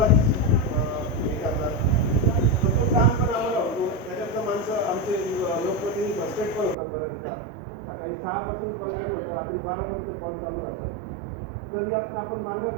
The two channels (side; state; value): left; drops out; at 6.8 s